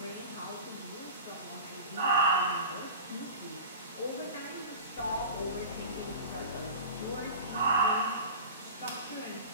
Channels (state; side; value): inverted; both; correlation -0.33